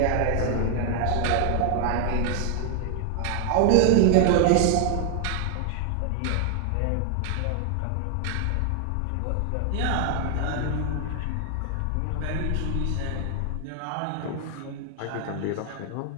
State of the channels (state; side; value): different; both; correlation 0.00